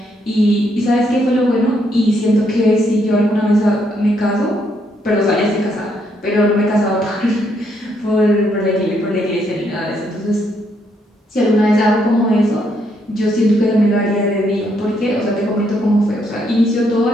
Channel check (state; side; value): normal; both; correlation 0.74